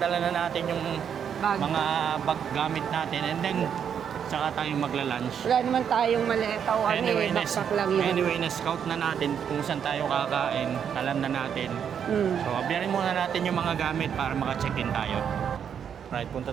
na natin yung Bag. mga bag gamit natin. And then, saka tayo magla-lunch. Wala naman tayong maleta o backpack lang yun. Anyway, na-scout na natin kung saan tayo kakain. Alam na natin. So, abiyarin muna natin yung mga gamit para maka-check-in tayo. Right, punta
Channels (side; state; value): left; quieter; 8.0 dB